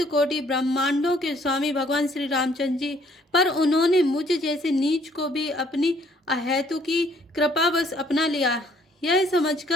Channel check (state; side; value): normal; both; correlation 0.63